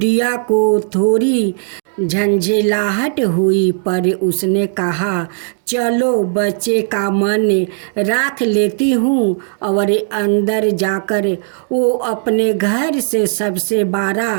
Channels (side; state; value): left; silent; 65 dB below the other